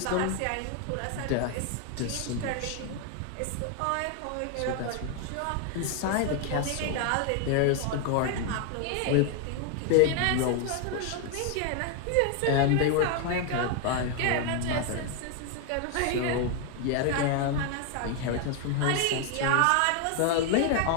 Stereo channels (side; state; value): both; different; correlation 0.00